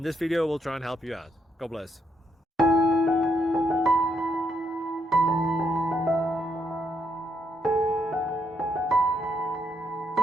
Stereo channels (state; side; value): normal; both; correlation 0.76